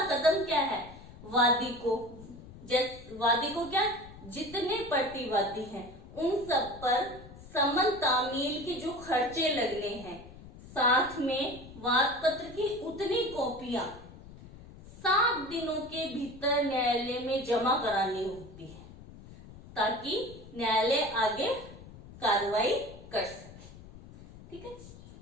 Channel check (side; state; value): left; noise; rumble, 17 dB below the sound